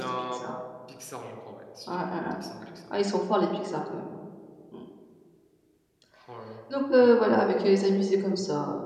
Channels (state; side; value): identical; both; correlation 1.00